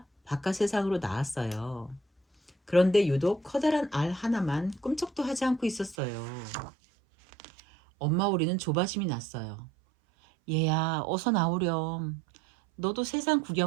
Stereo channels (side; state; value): left; drops out; at 6.0 s